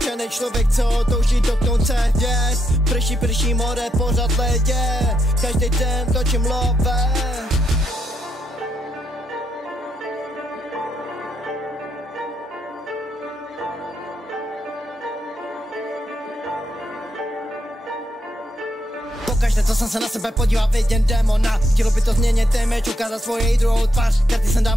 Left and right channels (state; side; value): normal; both; correlation 0.80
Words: člověk, co touží dotknout se hvězd. Prší more, pořád ledě, každý den točím love. Pokaždé, co jsem se na sebe podíval, vidím démona. Chtělo by to změnit image, ukázat svoji druhou tvář. Karty jsem